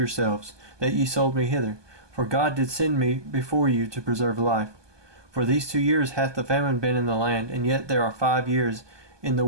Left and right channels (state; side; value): late; left; 1.2 ms